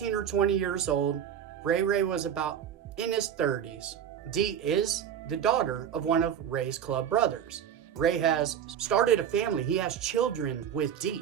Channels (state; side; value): quieter; left; 9.0 dB